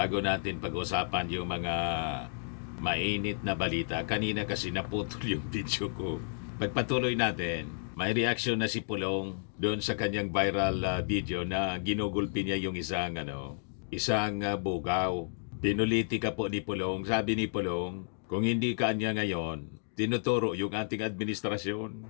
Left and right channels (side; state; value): right; silent; digital silence